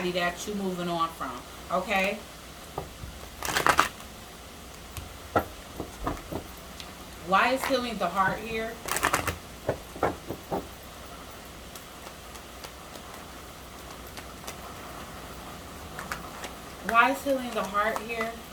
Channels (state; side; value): identical; both; correlation 1.00